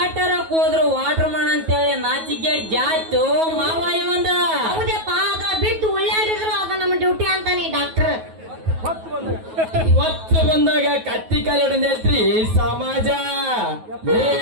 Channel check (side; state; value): left; late; 9.3 ms